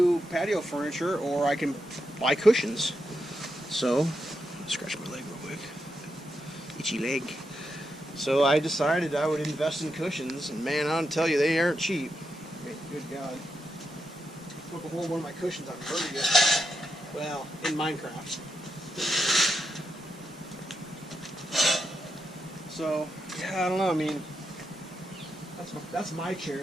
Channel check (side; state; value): both; normal; correlation 0.85